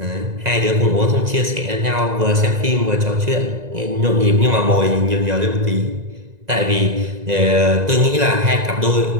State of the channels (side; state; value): left; late; 2.0 ms